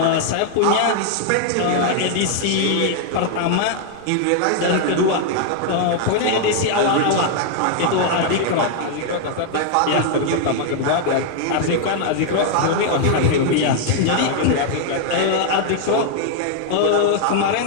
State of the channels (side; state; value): both; different; correlation 0.00